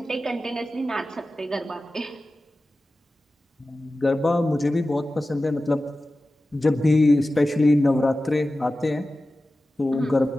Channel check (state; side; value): normal; both; correlation 0.95